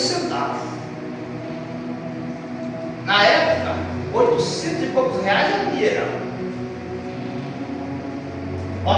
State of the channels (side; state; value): both; identical; correlation 1.00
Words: Na época, 800 e poucos reais era dinheiro.